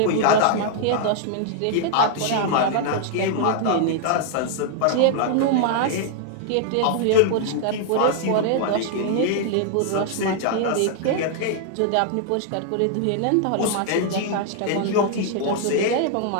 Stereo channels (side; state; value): both; different; correlation 0.00